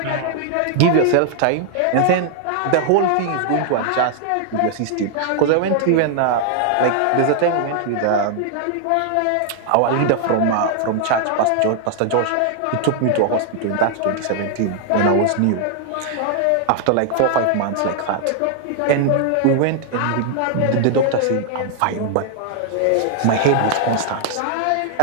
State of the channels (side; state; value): both; different; correlation 0.00